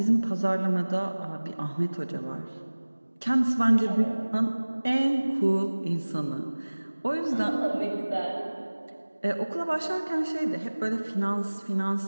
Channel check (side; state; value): both; inverted; correlation -1.00